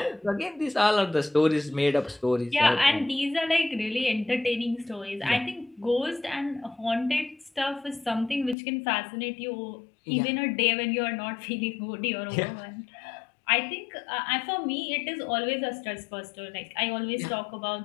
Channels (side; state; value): right; drops out; at 8.6 s